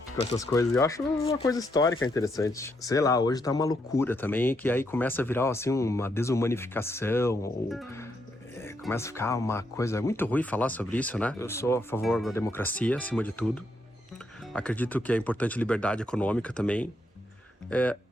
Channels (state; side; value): normal; both; correlation 0.78